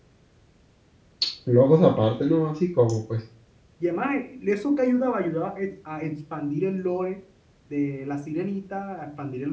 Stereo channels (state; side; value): identical; both; correlation 1.00